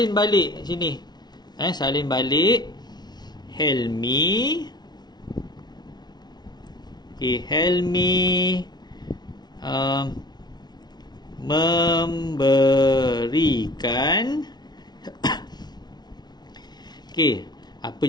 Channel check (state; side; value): late; right; 0.20 ms